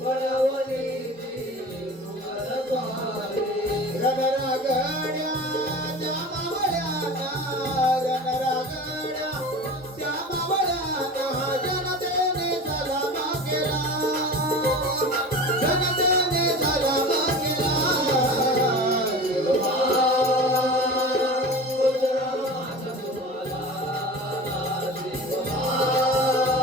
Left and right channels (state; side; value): normal; both; correlation 0.35